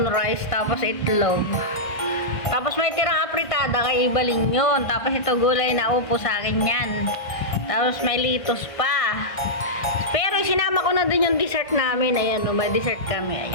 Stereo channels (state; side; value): late; right; 1.6 ms